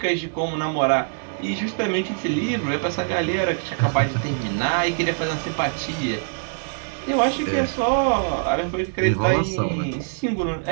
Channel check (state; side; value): silent; left; 61 dB below the other